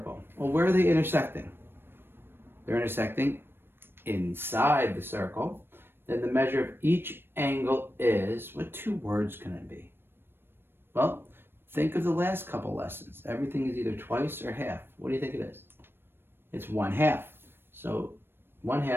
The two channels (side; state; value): left; late; 0.10 ms